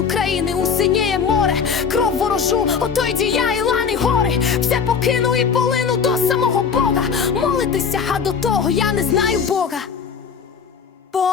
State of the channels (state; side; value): quieter; right; 6.3 dB